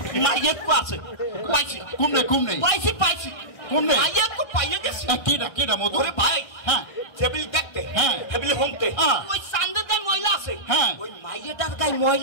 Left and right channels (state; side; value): late; right; 1.4 ms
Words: মায়ের কো আছে পাইছি কুমনে পাইছি কুমনে মায়ের কো পাইয়ে গেছি কেডা মধু ওরে ভাই হ্যাঁ টেবিল দেখতে হ্যাঁ। টেবিলে হোমতে হ্যাঁ। ওই সান্দের গায়ে ময়লা আছে হ্যাঁ। ওই মাইয়াটার গায়ে